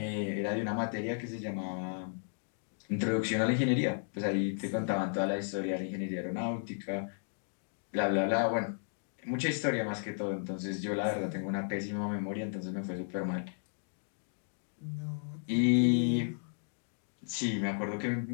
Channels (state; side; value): silent; right; digital silence